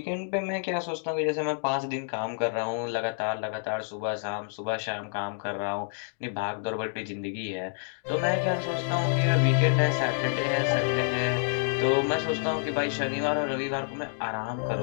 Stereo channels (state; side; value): silent; right; 59 dB below the other